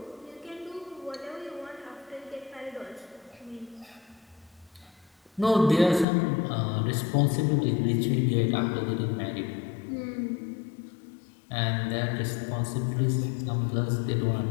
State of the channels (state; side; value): drops out; right; at 6.1 s